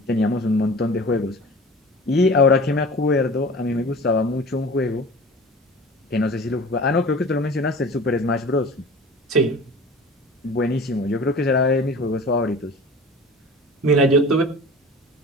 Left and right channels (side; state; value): both; normal; correlation 0.39